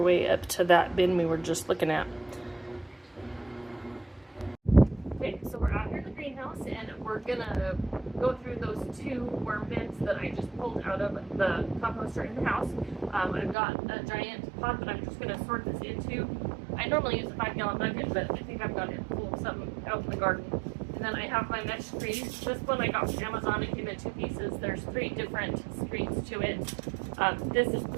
way up to that bin we were just looking at. Okay, so we're out here in the greenhouse and we're gonna go through those 2 worm bins that I just pulled out of the composter in the house. I've got a giant pot that I'm just gonna sort this into. I normally use a 5-gallon bucket, but I think I've got it full of something out in the garden. And then I have my mesh screens. This one I got from Amazon. It came in 2 pieces. There's 3 different screens to it. This is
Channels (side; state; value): left; drops out; at 13.6 s